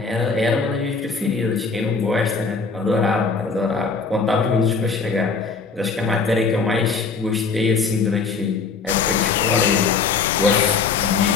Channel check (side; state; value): right; quieter; 4.8 dB